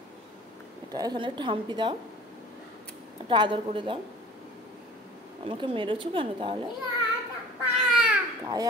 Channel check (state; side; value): normal; both; correlation 0.45